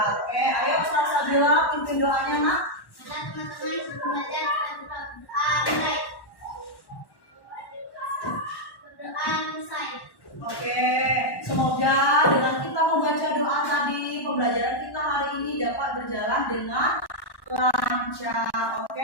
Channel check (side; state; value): right; late; 1.1 ms